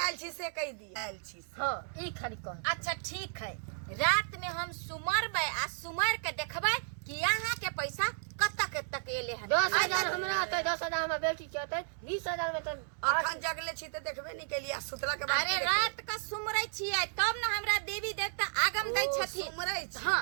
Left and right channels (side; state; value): left; silent; digital silence